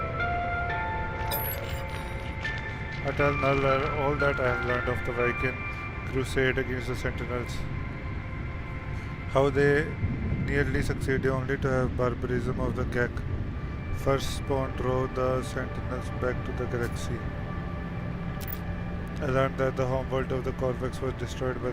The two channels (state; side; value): identical; both; correlation 1.00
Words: I tell Null all that I have learned of the Viking crusade against the Sentinels. How they nearly succeeded only to have barbarism of the Gek First spawn drove the Sentinels back to the galaxy. I learned that the homeworld of the Corvex was destroyed by